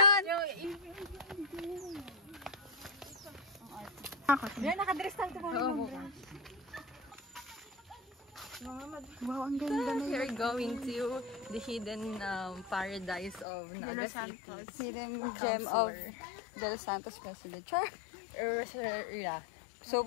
Yan, nakadress lang ito. Wow, ang ganda na We're going to the hidden paradise of Naga City. Hidden gem of Del Santos President. Char! Yeah. So,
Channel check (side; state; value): right; drops out; at 13.5 s